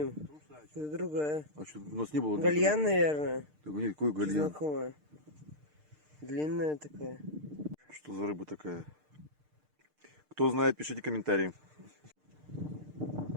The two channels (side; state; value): left; late; 6.6 ms